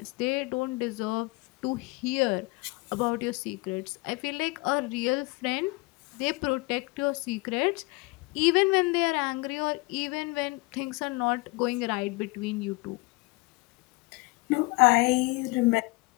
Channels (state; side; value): quieter; right; 24.6 dB